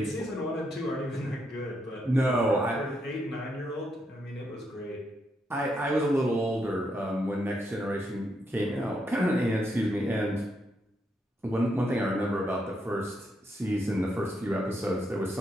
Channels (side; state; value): both; normal; correlation 0.79